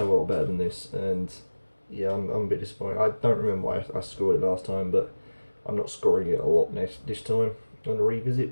of a lot better than this, and yeah, I'm a bit disappointed. I don't remember why I scored it last time, but I'm not scoring it a lot this time on a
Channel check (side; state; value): both; inverted; correlation -1.00